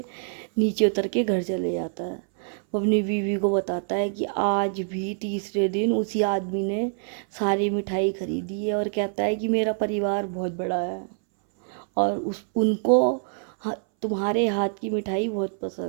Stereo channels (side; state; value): left; silent; 61 dB below the other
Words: نیچے اتر کے گھر چلے جاتا ہے۔ وہ اپنی بیوی کو بتاتا ہے کہ آج بھی تیسرے دن اسی آدمی نے ساری مٹھائی خریدی ہے اور کہتا ہے کہ میرا پریوار بہت بڑا ہے اور ان کو تمہارے ہاتھ کی مٹھائی بہت